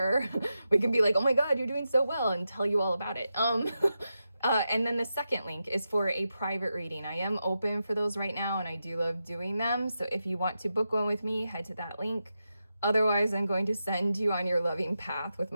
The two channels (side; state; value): both; inverted; correlation -0.89